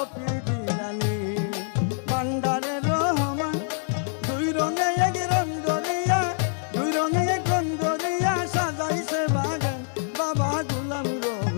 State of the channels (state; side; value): silent; right; digital silence